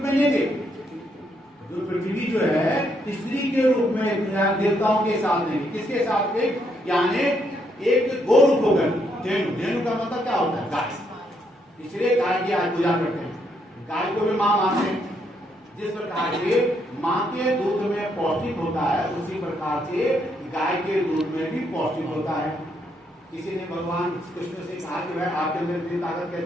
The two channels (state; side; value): normal; both; correlation 0.75